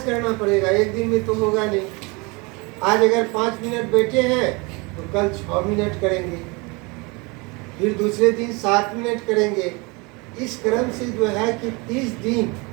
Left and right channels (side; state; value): left; quieter; 27.7 dB